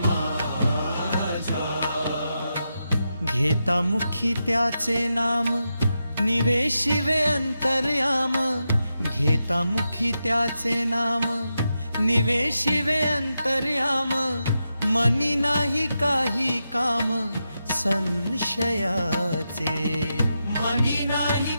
घेता मुखी त्याचे नाम निवेशिवे अंतर्याम, घेता मुखी त्याचे नाम निवेशिवे अंतर्याम, मनी नाही काही काम संशयाचे, मनी नाही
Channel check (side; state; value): both; inverted; correlation -0.87